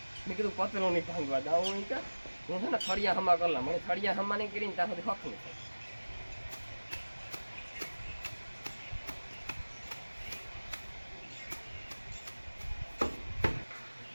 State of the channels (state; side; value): inverted; both; correlation -1.00